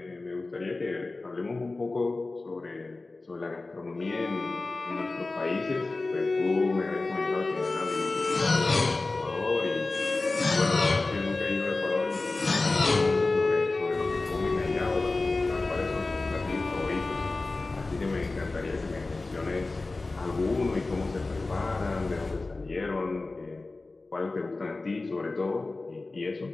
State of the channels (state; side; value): quieter; right; 3.4 dB